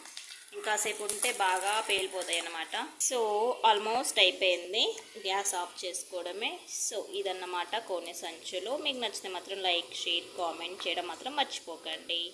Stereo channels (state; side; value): identical; both; correlation 1.00